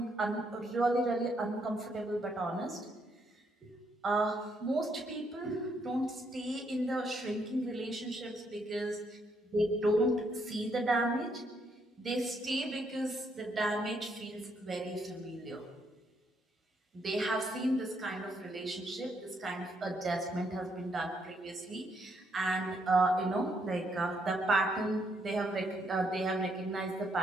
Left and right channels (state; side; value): normal; both; correlation 0.74